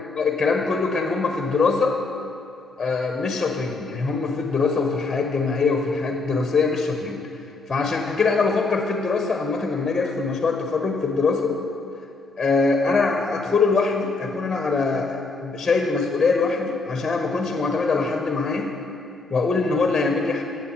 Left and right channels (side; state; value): right; quieter; 3.8 dB